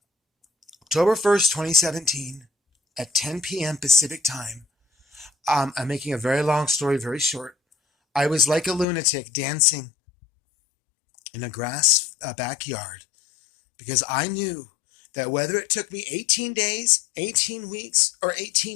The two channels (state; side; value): drops out; right; at 8.8 s